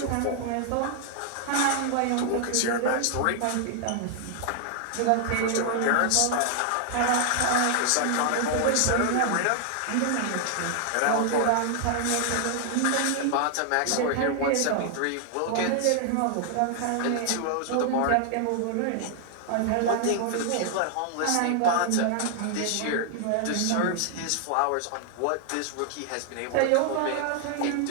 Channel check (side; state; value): both; different; correlation 0.00